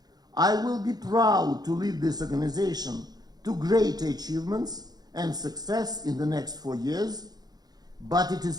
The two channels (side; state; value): left; late; 0.19 ms